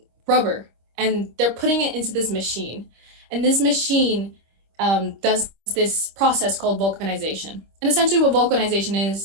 rubber, and they're putting it into this machine. And this machine does this process called vulcanization. And essentially what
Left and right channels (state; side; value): late; left; 26 ms